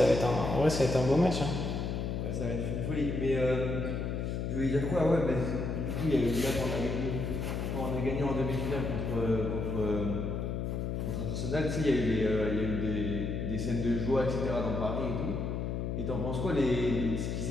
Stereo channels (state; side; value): noise; left; hum, 2 dB below the sound